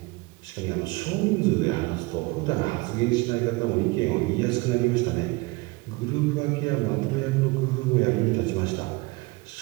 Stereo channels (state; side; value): quieter; left; 24.2 dB